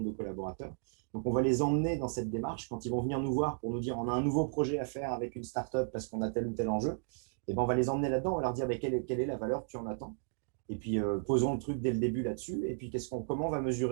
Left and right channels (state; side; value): silent; left; digital silence